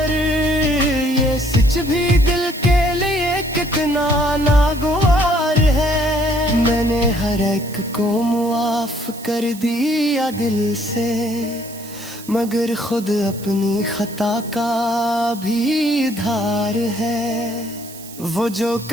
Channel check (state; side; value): noise; right; hiss, 17 dB below the sound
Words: ये सच भी दिल के लिए कितना नागवार है। मैंने हर एक को मुआफ कर दिया दिल से, मगर खुद अपनी खता का भी धार है। वो जो